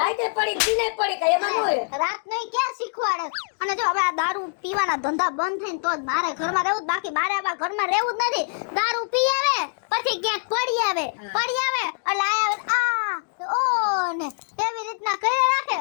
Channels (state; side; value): silent; right; digital silence